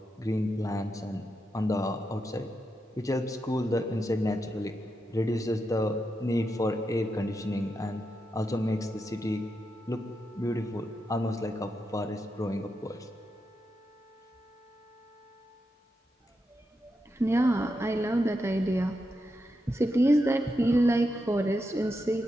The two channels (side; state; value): both; normal; correlation 0.85